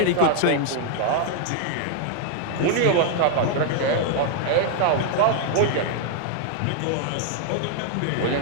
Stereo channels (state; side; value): different; both; correlation 0.00